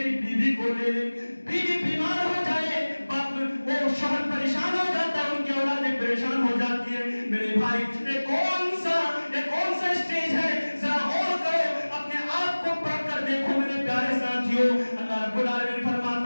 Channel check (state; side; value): inverted; both; correlation -1.00